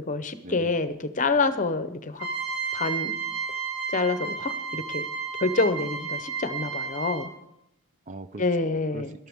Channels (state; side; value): normal; both; correlation 0.01